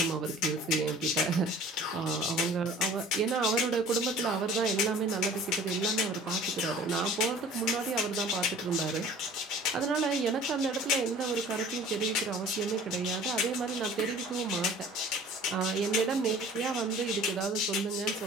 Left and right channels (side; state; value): both; normal; correlation 0.47